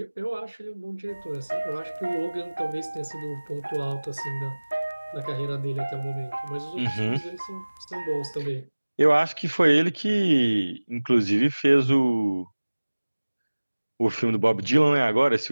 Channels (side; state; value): both; inverted; correlation -1.00